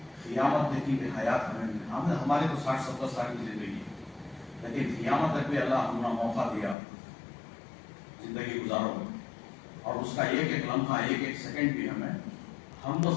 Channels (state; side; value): drops out; right; at 6.8 s